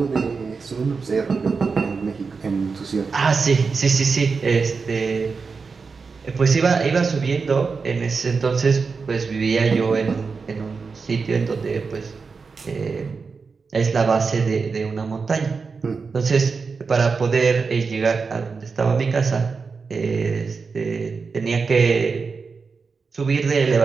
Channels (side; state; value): left; quieter; 4.9 dB